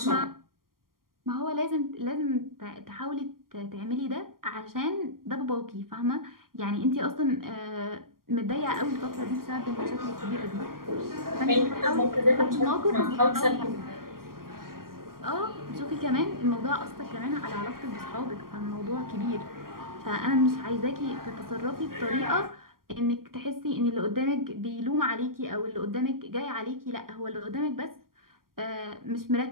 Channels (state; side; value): late; left; 0.92 ms